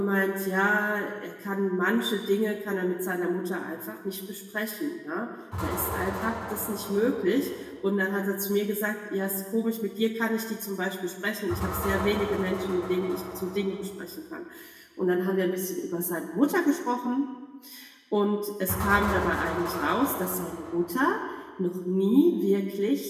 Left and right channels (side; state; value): both; identical; correlation 1.00